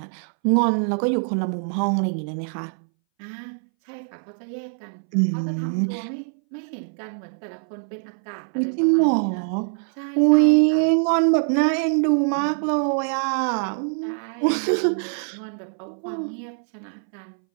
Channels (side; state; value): left; silent; 62 dB below the other